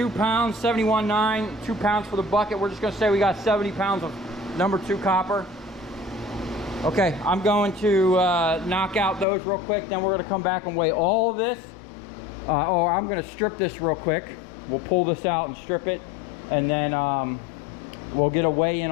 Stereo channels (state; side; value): drops out; right; at 9.2 s